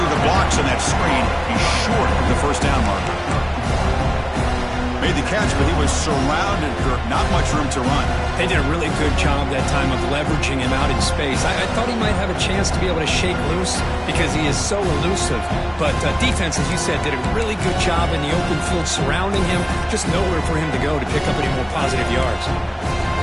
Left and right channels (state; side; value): identical; both; correlation 1.00